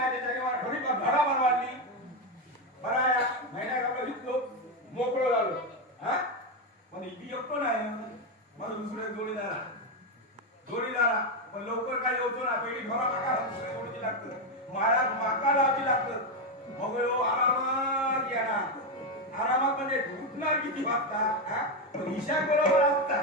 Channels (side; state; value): both; normal; correlation 0.08